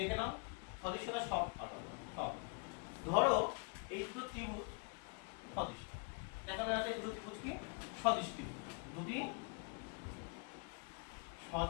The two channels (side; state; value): right; quieter; 33.8 dB